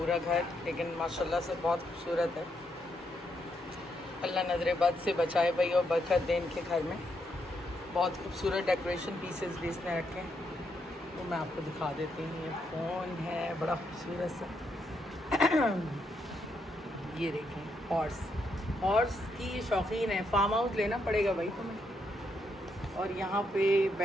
घर, लेकिन माशाल्लाह से बहुत खूबसूरत है। अल्लाह नजर बद से बचाए भाई और बरकत दे इनके घर में। बहुत खूबसूरत डेकोरेशन पीसेस भी इसने रखे हैं, तो मैं आपको दिखा देती हूँ। ये फ़ोन है बड़ा खूबसूरत सा ये देखें हॉर्स की ये शौकीन है, फार्म हाउस लेना पड़ेगा भाई तुम्हें। और यहाँ पे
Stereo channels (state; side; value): normal; both; correlation 0.78